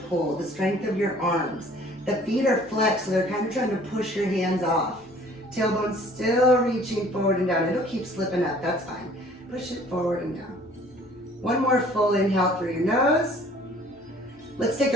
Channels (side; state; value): left; noise; hum, 30 dB below the sound